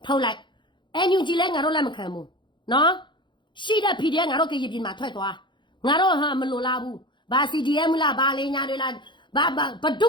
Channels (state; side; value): late; right; 0.23 ms